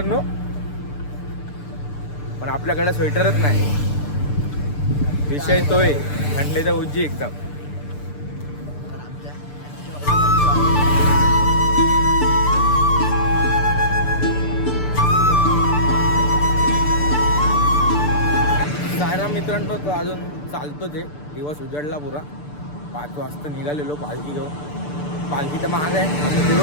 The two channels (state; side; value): late; right; 6.8 ms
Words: पण आपल्याकडे स्वेटरच नाही. विषय तोय थंडीचा उज्जी एकदम. सायराम मित्रांनो, तो अजून चालतो. ते दिवस उजडला पुरा. 5 वाजता निघालेलो पालखी घेऊन. पालखी तर महाग आहे, आम्ही फिरलो